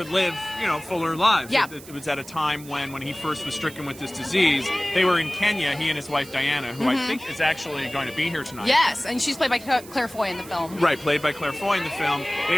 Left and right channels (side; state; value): right; noise; hiss, 18 dB below the sound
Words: live, you know, fuller lives. Yeah. It was at a time when he first was stricken with this disease. They were in Kenya, he and his wife Diana, who I think is actually going to be here tonight. Yes, and she's played by Claire Foy in the film. Right, played by Claire Foy in the film. They